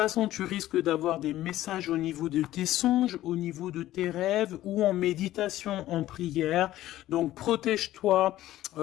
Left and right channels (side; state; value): right; quieter; 14.5 dB